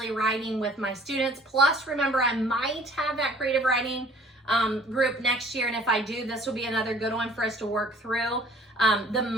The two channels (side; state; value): both; normal; correlation 0.54